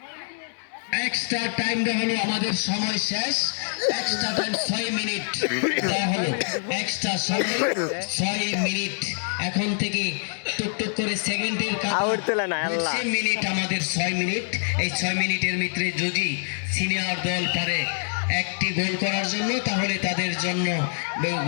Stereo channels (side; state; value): right; silent; digital silence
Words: এক্সট্রা টাইম দেওয়া হলো, আমাদের সময় শেষ। এক্সট্রা টাইম 6 মিনিট দেওয়া হলো, এক্সট্রা সময় 6 মিনিট। এখন থেকে টুকটুক করে সেকেন্ডের মিনিট, আমাদের 6 মিনিট। এই 6 মিনিটের ভিতরে যদি সিনিয়র দল পারে একটি গোল করার জন্য, তাহলে তাদের জন্য